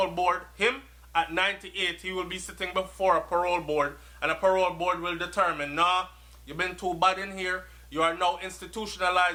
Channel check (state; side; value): identical; both; correlation 1.00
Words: board. Him, at 98, he will be sitting before a parole board, and a parole board will determine, nah, you've been too bad in here. You are now